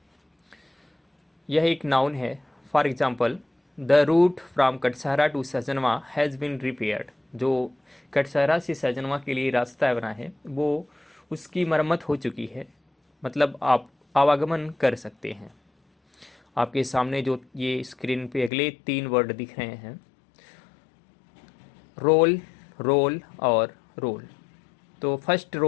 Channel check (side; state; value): right; drops out; at 18.5 s